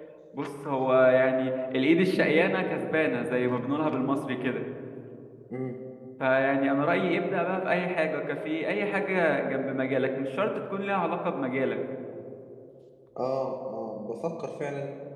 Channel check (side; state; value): both; identical; correlation 1.00